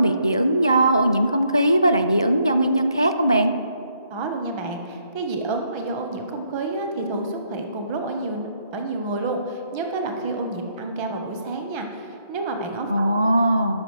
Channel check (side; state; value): both; inverted; correlation -0.72